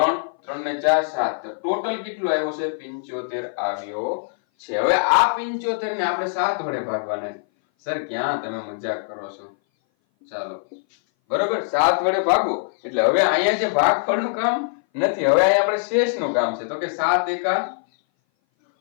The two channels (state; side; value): silent; right; 59 dB below the other